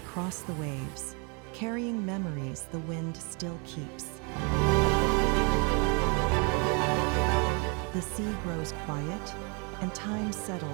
cross the waves, carrying memories the wind still keeps. The sea grows quiet, and time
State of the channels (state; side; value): quieter; left; 34.0 dB